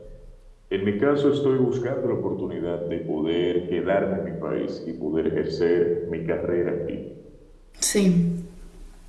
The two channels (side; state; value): both; identical; correlation 1.00